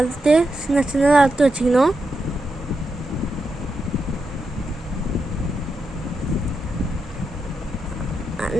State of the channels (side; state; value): both; normal; correlation 0.86